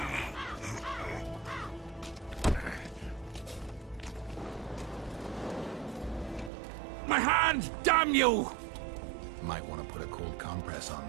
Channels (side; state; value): left; drops out; at 6.5 s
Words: My hand! Damn you! Might want to put a cold compress on